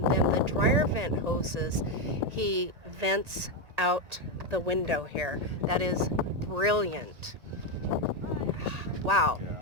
then the dryer vent hoses, he vents out the window here. That is brilliant. Wow.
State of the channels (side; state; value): left; late; 1.9 ms